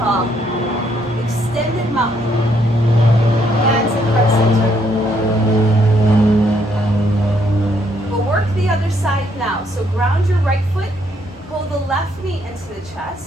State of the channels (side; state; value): both; normal; correlation 0.71